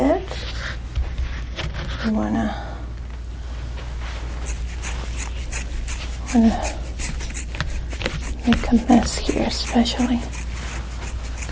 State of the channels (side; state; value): both; identical; correlation 1.00